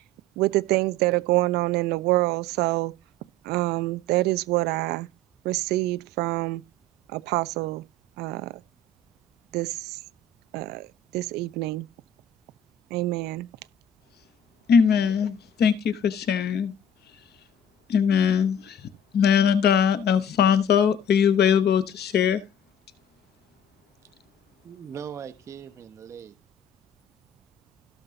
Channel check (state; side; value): normal; both; correlation 0.43